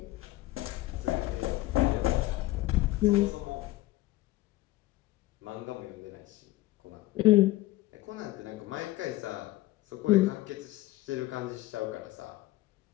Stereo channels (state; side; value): quieter; right; 17.8 dB